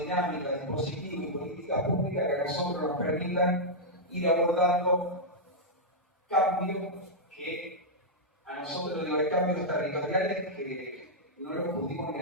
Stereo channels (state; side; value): normal; both; correlation -0.07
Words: dispositivos y políticas públicas que a nosotros nos permitan ir abordando cambios que a nosotros los cambios territoriales que no los pudimos ni